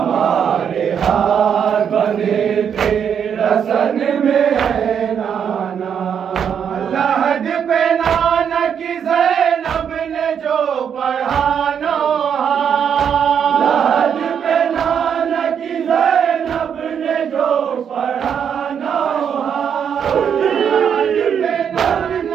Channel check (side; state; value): left; quieter; 7.9 dB